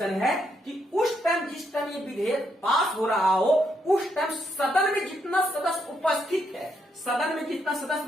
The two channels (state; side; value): normal; both; correlation 0.77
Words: है कि उस टाइम जिस टाइम ये विधेयक पास हो रहा हो उस टाइम सदन में जितना सदस्य उपस्थित है, सदन में जितना सदस्य,